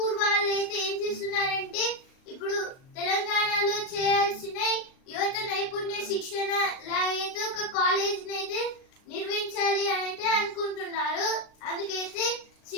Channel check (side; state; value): right; late; 38 ms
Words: వాళ్ళు అయితే ఏం చేస్తున్నారంటే ఇప్పుడు తెలంగాణలో చేయాల్సిన యువత నైపుణ్య శిక్షణ లాగైతే ఒక కాలేజ్ అయితే నిర్మించాలి అని అయితే అనుకుంటున్నారు. అందుకైతే